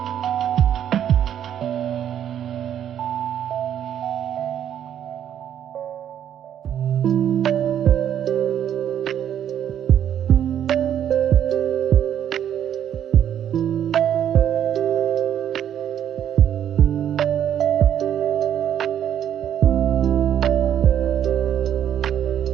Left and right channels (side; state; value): left; quieter; 9.9 dB